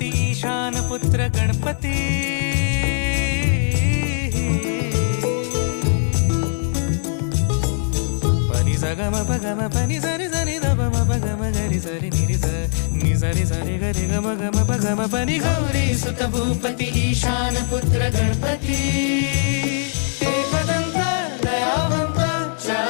ईशान पुत्र गणपती पनि सगम पगम पनि सरि सरि दपम पगम गरि सरि निरि स नि सरि सरि गरि गम गम पगम पनि गौरी सुत भूपती ईशान पुत्र गणपती एकदंत दयावंत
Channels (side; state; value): right; silent; digital silence